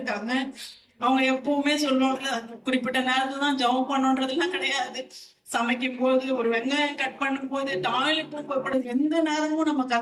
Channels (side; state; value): both; identical; correlation 1.00